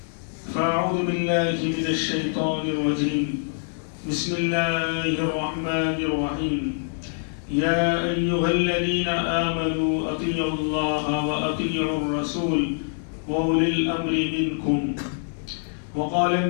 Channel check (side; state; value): right; silent; digital silence